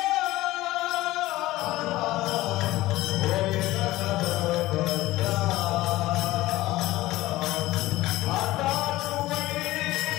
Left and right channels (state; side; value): quieter; right; 17.3 dB